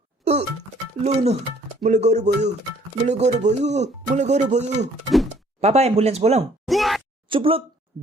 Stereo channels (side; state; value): both; normal; correlation 0.60